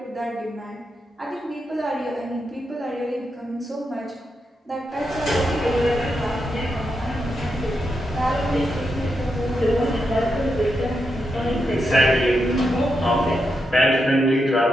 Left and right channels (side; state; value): both; normal; correlation 0.85